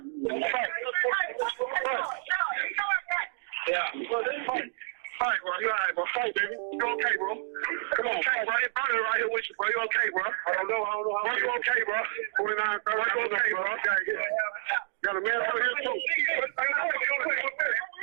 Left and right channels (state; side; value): silent; left; digital silence